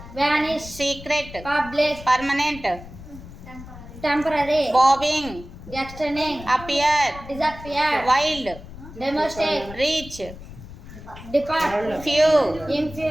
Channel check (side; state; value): left; noise; rumble, 15 dB below the sound